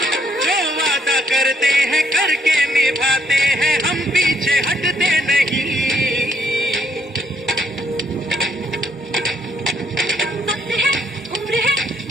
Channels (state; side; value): normal; both; correlation 0.71